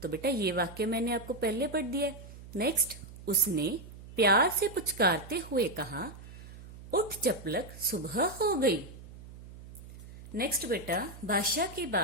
तो बेटा ये वाक्य मैंने आपको पहले पढ़ दिया। नेक्स्ट, उसने प्यार से पुचकारते हुए कहा, उठ चपलक, सुबह हो गई। नेक्स्ट बेटा, भाषा के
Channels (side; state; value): right; noise; hum, 16 dB below the sound